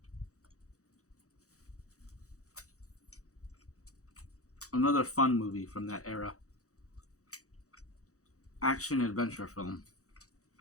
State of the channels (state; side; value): late; right; 0.65 ms